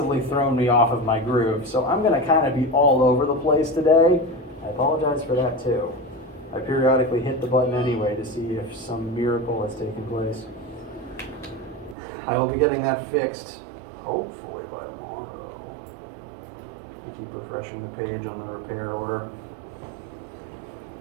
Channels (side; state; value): left; drops out; at 12.0 s